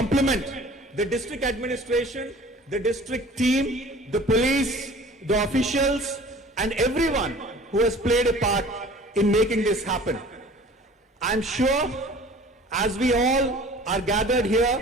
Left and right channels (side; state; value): both; normal; correlation 0.46